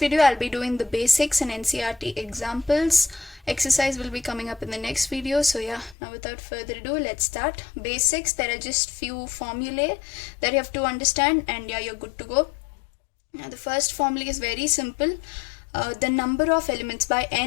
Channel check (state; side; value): drops out; right; at 6.0 s